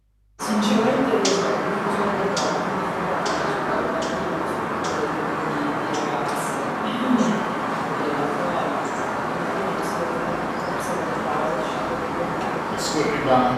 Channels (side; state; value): both; identical; correlation 1.00